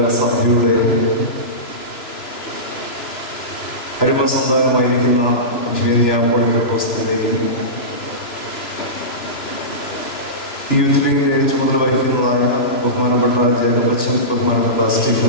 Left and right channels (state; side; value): late; right; 2.9 ms